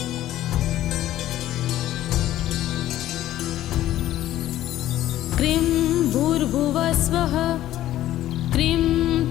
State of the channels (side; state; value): right; quieter; 13.6 dB